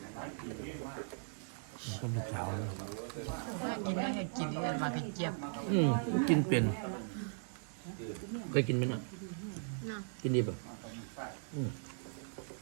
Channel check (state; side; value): silent; left; 52 dB below the other